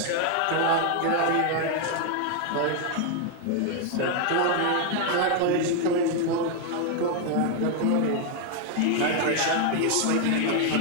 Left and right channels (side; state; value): both; different; correlation 0.00